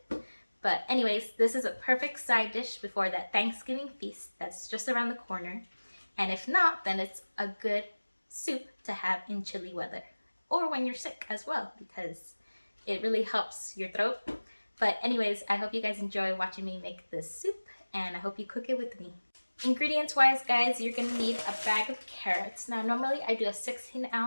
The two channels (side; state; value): both; inverted; correlation -1.00